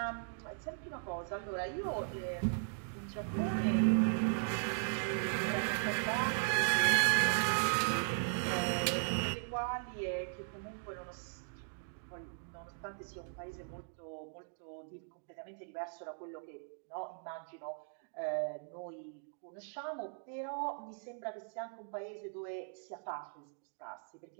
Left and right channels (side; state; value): left; silent; digital silence